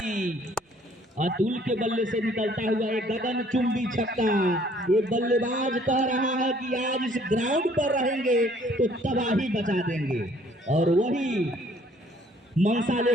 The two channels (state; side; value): normal; both; correlation 0.60